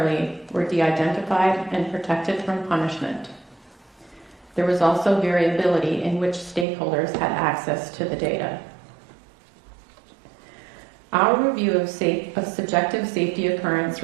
were de-identified and protected from punishment. There was also variability in which stakeholders had access to the data. Our review of subjective safety occurrence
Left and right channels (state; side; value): drops out; left; at 6.7 s